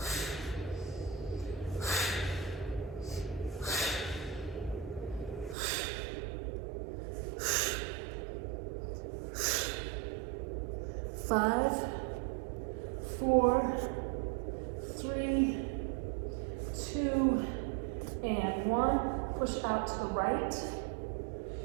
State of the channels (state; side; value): drops out; left; at 5.6 s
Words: Five, 4, 3, 2, and 1. Push out to the right.